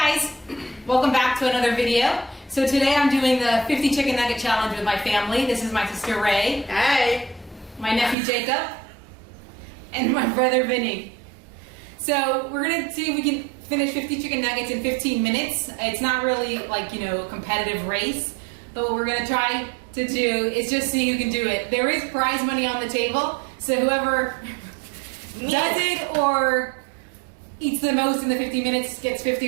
welcome back to another video. So today I'm doing the 50 chicken nugget challenge with my family. This is my sister Ray. Hey. My nephew Jacob. And my brother Vinny. So we're gonna see if we can finish 50 chicken nuggets in 15 minutes. It's not really like, a competitive race, but what we're gonna try to do is just see who can do it. There is prize money on the table, so whoever does it or eats the most in the 50 minutes gets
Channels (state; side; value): drops out; left; at 8.2 s